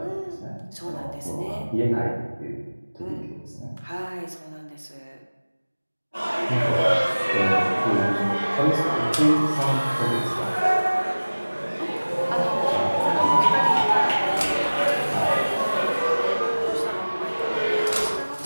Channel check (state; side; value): inverted; both; correlation -1.00